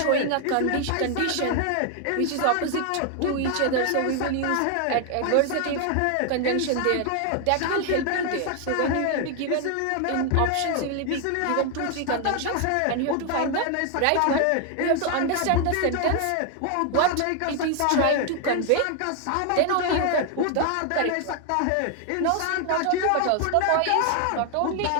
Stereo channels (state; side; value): different; both; correlation 0.00